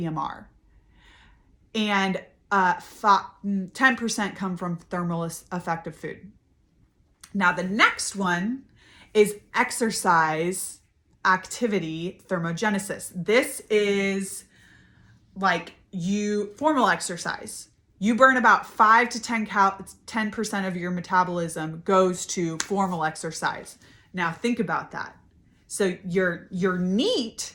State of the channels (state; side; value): identical; both; correlation 1.00